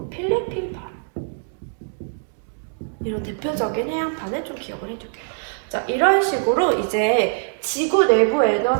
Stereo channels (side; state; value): left; silent; 64 dB below the other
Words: 필리핀판. 이런 대표적인 해양판을 좀 기억을 해둘게요. 자, 이런 식으로 이제 지구 내부